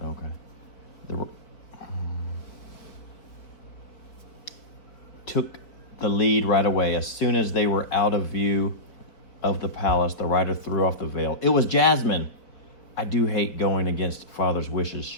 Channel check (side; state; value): right; late; 4.8 ms